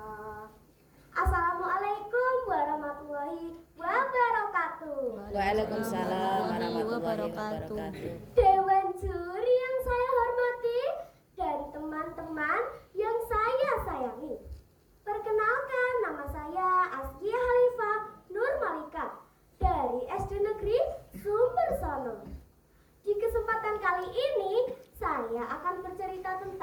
Assalamualaikum warahmatullahi wabarakatuh. Waalaikumsalam warahmatullahi wabarakatuh. Dewan juri yang saya hormati dan teman-teman yang saya sayangi. Perkenalkan, nama saya Askia Halifah Nur Malika dari SD Negeri Sumbersono. Di kesempatan kali ini, saya akan bercerita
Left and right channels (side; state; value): both; identical; correlation 1.00